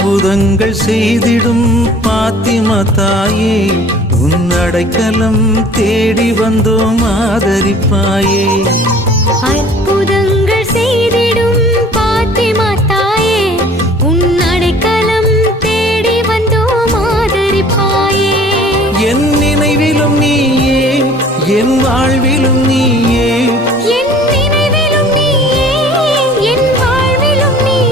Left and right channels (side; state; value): both; normal; correlation 0.50